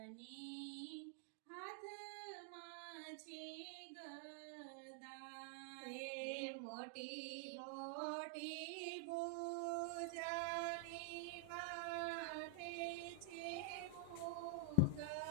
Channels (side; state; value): both; different; correlation 0.00